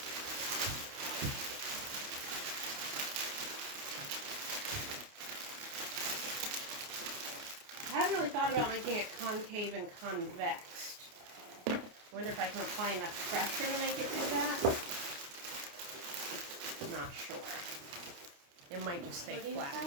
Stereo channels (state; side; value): late; left; 29 ms